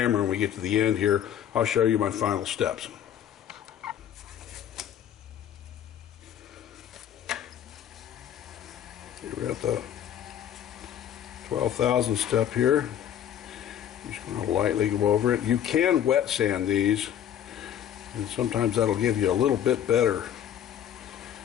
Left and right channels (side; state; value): right; quieter; 10.0 dB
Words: When we get to the end here, I'll show you my final steps. We're at the 12,000 step here. I'm just going to lightly go over it. You can wet sand these, and sometimes that'll give you a little bit better